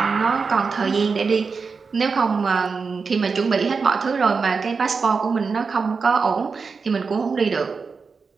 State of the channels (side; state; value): left; quieter; 5.0 dB